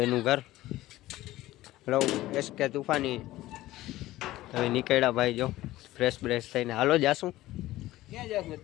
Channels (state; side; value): quieter; right; 16.4 dB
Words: એનું ઘર. હેલો એસકે તુફાની, હવે નીકળ્યા ભાઈ, જો ફ્રેશ બ્રેશ થઈને. હાલો જાશું, ક્યાં જાશું